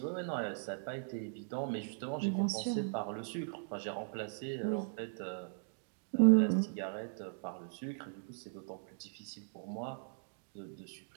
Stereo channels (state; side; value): silent; left; digital silence